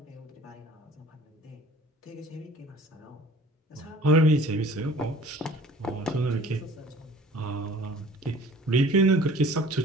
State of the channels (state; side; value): normal; both; correlation 0.49